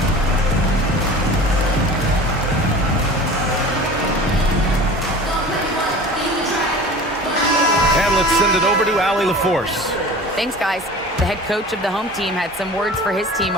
Send it over to Allie LaForce. Thanks, guys. The head coach of the home team had some words for his team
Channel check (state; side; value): normal; both; correlation 0.39